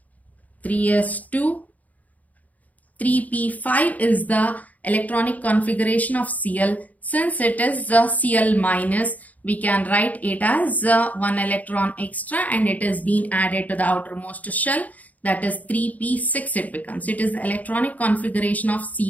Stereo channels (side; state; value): right; late; 0.074 ms